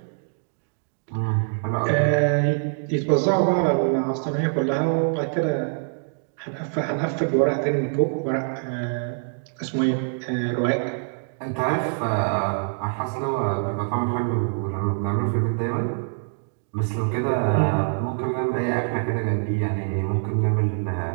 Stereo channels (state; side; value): silent; left; digital silence